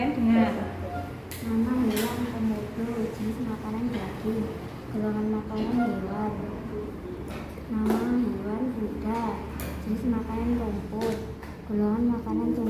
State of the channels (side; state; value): both; identical; correlation 1.00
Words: dengar. Nama hewan komodo, jenis makanan daging. Golongan makanan hewan. Nama hewan kuda, jenis makanan rumput. Golongan makanan